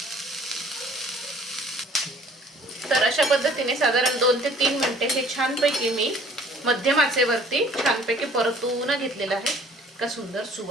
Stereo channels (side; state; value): both; normal; correlation 0.54